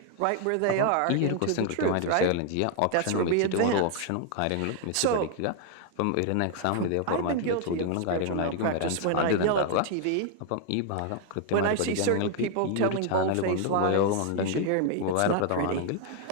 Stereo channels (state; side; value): different; both; correlation 0.00